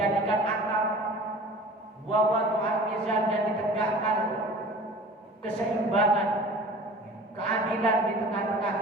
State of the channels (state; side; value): normal; both; correlation 0.42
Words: atap, wawadhu al-mizan dan ditegakkan keseimbangan, keadilan di tengah-tengah